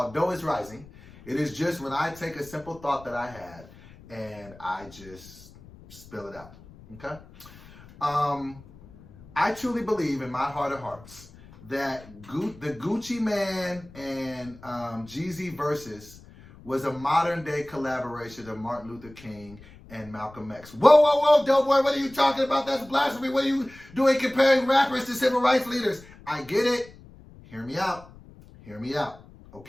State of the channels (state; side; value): noise; left; rumble, 21 dB below the sound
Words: Dough is Rising. It is just when I take a simple thought that I had and I just spill it out. Okay? I truly believe in my heart of hearts that the Gucci Mane and Jeezy Versus was a modern day collaboration of Martin Luther King and Malcolm X. Whoa, Doughboy, what are you talking about? That's blasphemy. What are you doing comparing rappers to civil rights leaders? I get it. Hear me out.